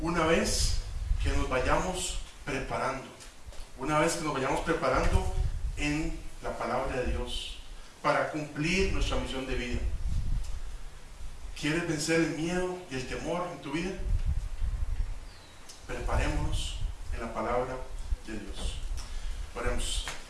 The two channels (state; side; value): identical; both; correlation 1.00